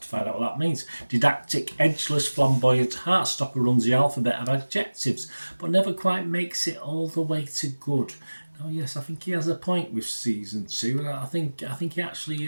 to find out what that means. Didactic, edgeless, flamboyant, Heartstopper runs the alphabet of adjectives, but never quite makes it all the way to good. Oh yes, I think he has a point with season 2, and I think he actually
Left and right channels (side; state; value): both; inverted; correlation -1.00